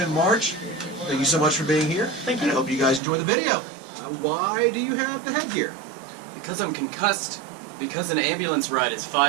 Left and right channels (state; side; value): drops out; left; at 3.0 s